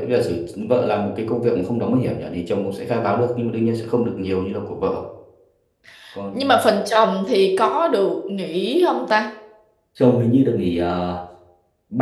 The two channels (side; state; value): both; identical; correlation 1.00